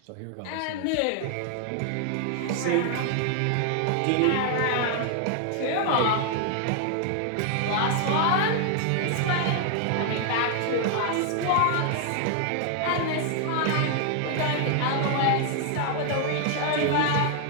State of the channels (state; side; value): different; both; correlation 0.00